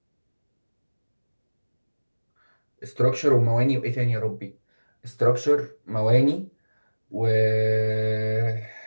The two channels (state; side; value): inverted; both; correlation -1.00